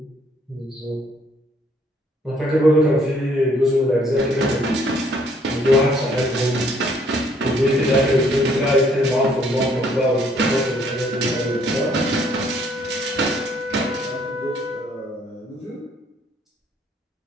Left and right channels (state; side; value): normal; both; correlation 0.64